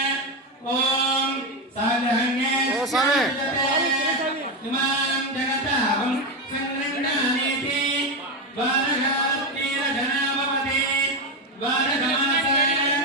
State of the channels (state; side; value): normal; both; correlation 0.12